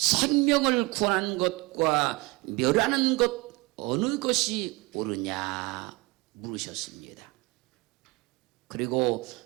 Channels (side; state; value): left; quieter; 24.3 dB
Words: 구하는 것과 멸하는 것 어느 것이 옳으냐 물으셨습니다. 그리고